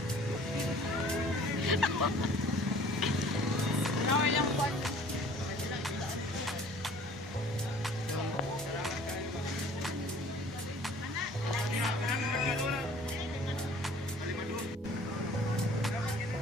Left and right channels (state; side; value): normal; both; correlation 0.51